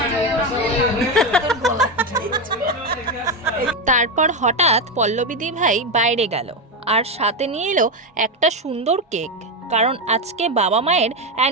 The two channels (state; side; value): normal; both; correlation 0.11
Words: তারপর হঠাৎ পল্লবীদি ভাই বাইরে গেল আর সাথে নিয়ে এলো একটা সুন্দর কেক, কারণ আজকে বাবা মায়ের